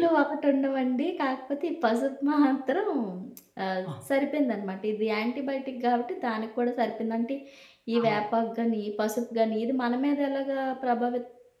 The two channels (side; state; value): both; identical; correlation 1.00